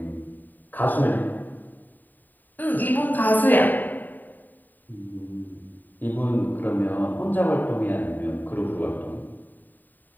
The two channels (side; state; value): right; late; 0.088 ms